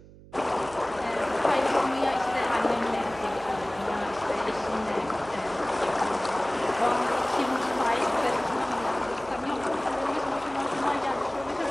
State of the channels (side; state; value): right; noise; hum, 20 dB below the sound